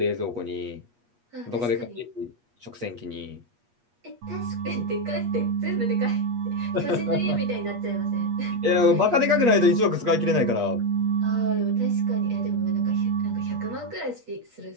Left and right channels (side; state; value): left; late; 8.4 ms